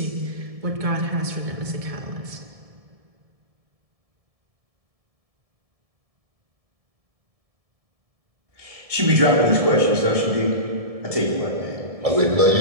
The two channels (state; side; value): late; left; 1.7 ms